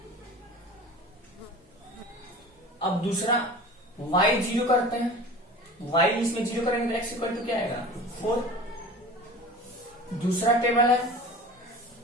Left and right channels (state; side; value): normal; both; correlation 0.38